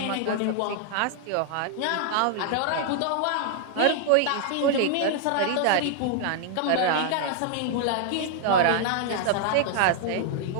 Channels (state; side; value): different; both; correlation 0.00